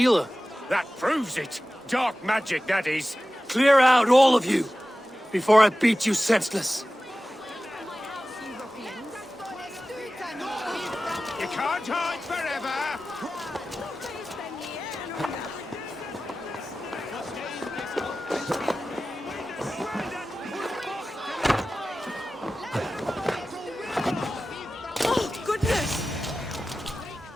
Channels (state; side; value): normal; both; correlation 0.95